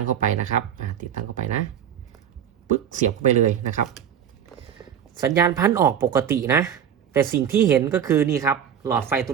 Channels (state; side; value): quieter; left; 8.8 dB